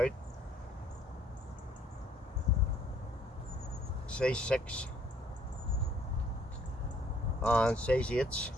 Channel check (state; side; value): normal; both; correlation 0.62